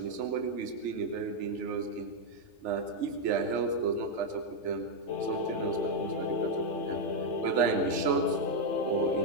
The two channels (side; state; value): left; late; 3.4 ms